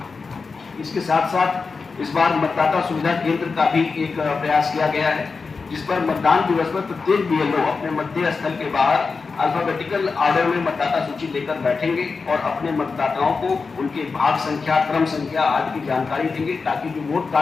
इसके साथ साथ इस बार मतदाता सुविधा केंद्र का भी एक प्रयास किया गया है, जिस पर मतदान दिवस पर प्रत्येक बीएलओ अपने मतदेय स्थल के बाहर अल्फाबेटिकल ऑर्डर में मतदाता सूची लेकर बैठेंगे और अपने मतदाताओं को उनके भाग संख्या, क्रम संख्या आदि की जानकारी देंगे ताकि जो वोट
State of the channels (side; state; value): right; quieter; 4.6 dB